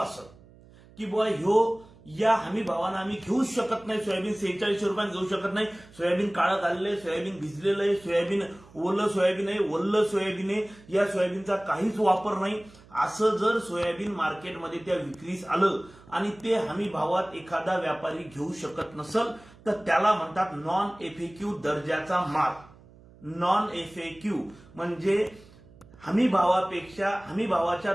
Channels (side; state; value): right; noise; hum, 24 dB below the sound